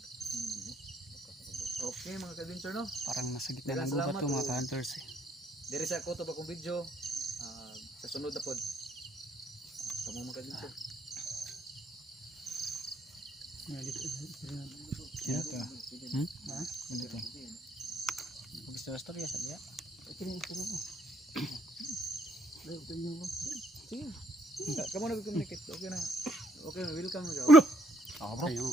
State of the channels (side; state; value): both; normal; correlation 0.69